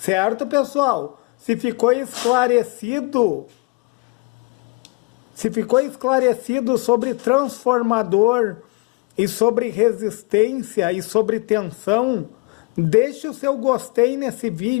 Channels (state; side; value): quieter; right; 27.1 dB